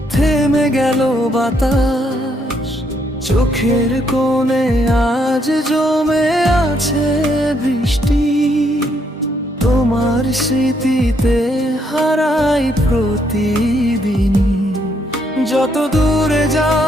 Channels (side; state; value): both; normal; correlation 0.73